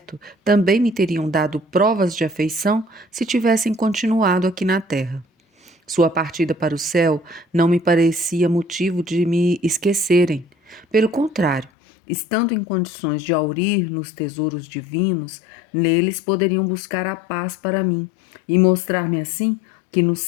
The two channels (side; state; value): right; drops out; at 11.7 s